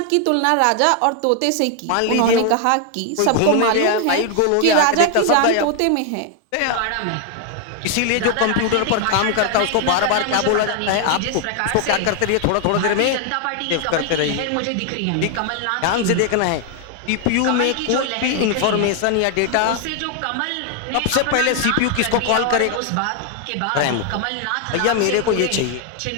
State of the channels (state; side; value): different; both; correlation 0.00